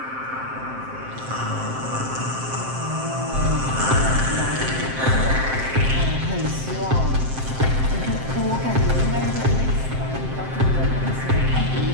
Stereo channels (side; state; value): left; late; 7.6 ms